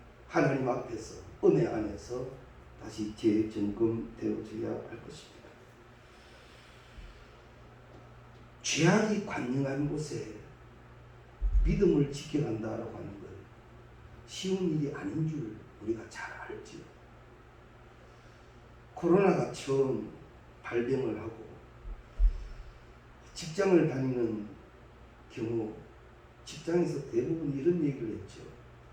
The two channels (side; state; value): both; identical; correlation 1.00